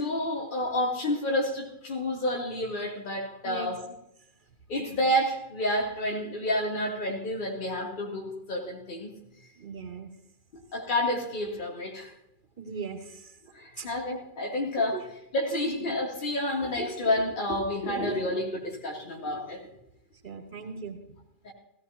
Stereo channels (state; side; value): late; right; 2.4 ms